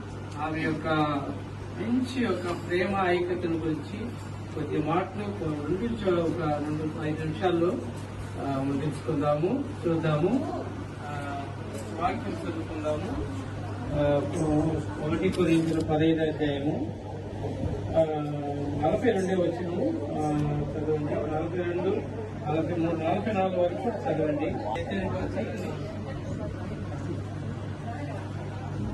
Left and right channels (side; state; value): both; identical; correlation 1.00